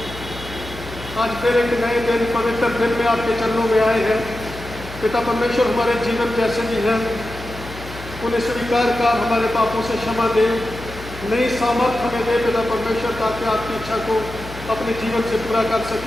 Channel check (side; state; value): left; noise; hum, 14 dB below the sound